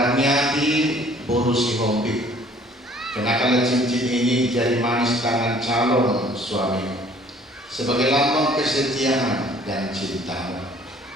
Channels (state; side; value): normal; both; correlation 0.55